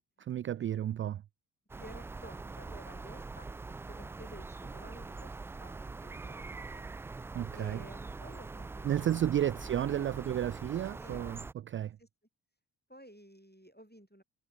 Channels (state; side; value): quieter; left; 8.8 dB